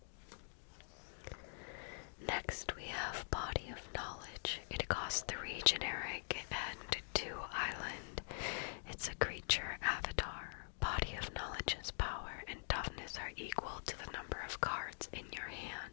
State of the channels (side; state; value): right; silent; digital silence